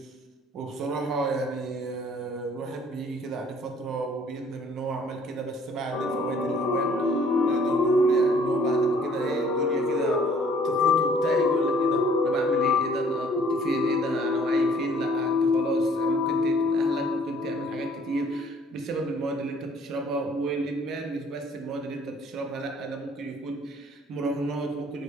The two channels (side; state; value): both; normal; correlation 0.58